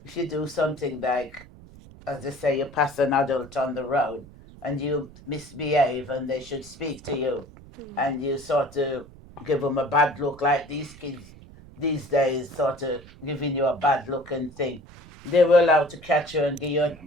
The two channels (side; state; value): right; noise; rumble, 20 dB below the sound